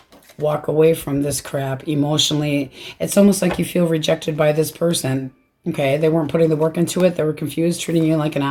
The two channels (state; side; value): identical; both; correlation 1.00